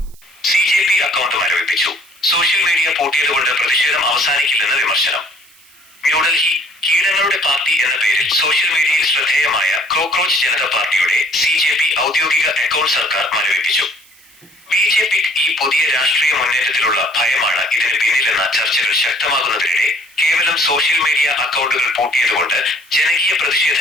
CJP അക്കൗണ്ട് മരവിപ്പിച്ചു. സോഷ്യൽ മീഡിയ പൂട്ടിയതുകൊണ്ട് പ്രതിഷേധം അവസാനിക്കില്ലെന്ന് വിമർശനം. ന്യൂഡൽഹി. കീടങ്ങളുടെ പാർട്ടി എന്ന പേരിൽ സോഷ്യൽ മീഡിയയിൽ ശ്രദ്ധേയമായ കോക്രോച്ച് ജനത പാർട്ടിയുടെ CJP ഔദ്യോഗിക അക്കൗണ്ട് സർക്കാർ മരവിപ്പിച്ചു. BJPക്ക് ഈ പുതിയ രാഷ്ട്രീയ മുന്നേറ്റത്തിലുള്ള ഭയമാണ് ഇതിന് പിന്നിലെന്ന ചർച്ചകൾ ശക്തമാകുന്നതിനിടെ കേവലം സോഷ്യൽ മീഡിയ അക്കൗണ്ടുകൾ പൂട്ടിയതുകൊണ്ട് ജനകീയ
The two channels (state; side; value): noise; right; hiss, 27 dB below the sound